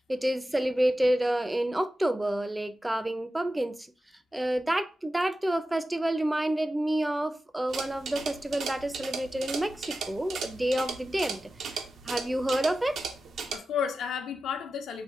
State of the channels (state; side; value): normal; both; correlation 0.93